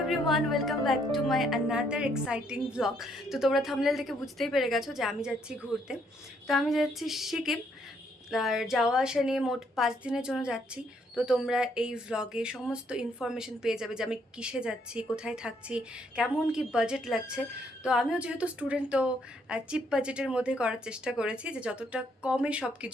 welcome back to my another exciting blog. তো তোমরা thumbnail থেকে বুঝতেই পেরে গেছো যে আমি যাচ্ছি ঘুরতে। তো আমি যাচ্ছি সিকিম, আর যাওয়া আসা নিয়ে মোট 5 দিনের জন্য যাচ্ছি। তো তোমরা এই ভ্লগে সমস্ত ইনফরমেশন পেয়ে যাবে যে আমি কিসে যাচ্ছি, কোথায় থাকছি, কেমন কি বাজেট লাগছে। তো আমিও যেহেতু স্টুডেন্ট, তো চিপ বাজেটের মধ্যে করার চেষ্টা করেছি যে যতটা কমে সব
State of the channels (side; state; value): both; normal; correlation 0.71